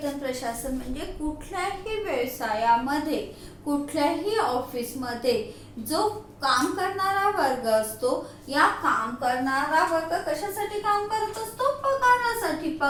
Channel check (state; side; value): identical; both; correlation 1.00